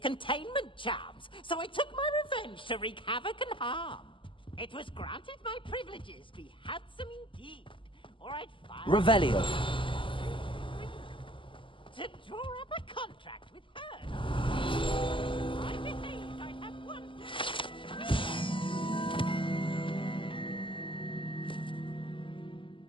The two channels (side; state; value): right; late; 0.25 ms